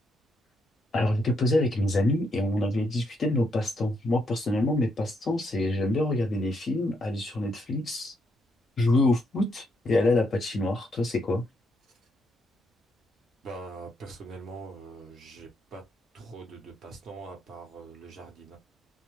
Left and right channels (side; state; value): both; normal; correlation 0.77